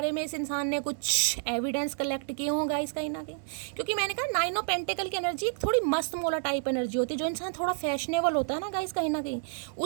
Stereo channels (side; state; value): left; silent; digital silence